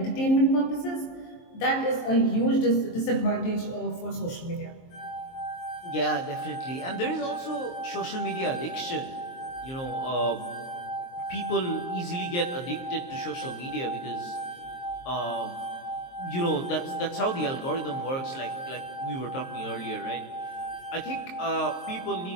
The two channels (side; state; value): right; late; 23 ms